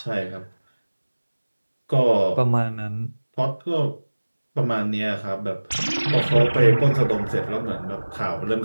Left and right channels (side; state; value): both; inverted; correlation -1.00